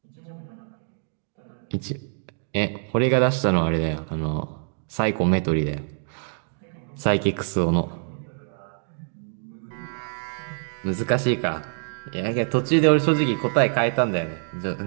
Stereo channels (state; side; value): silent; left; digital silence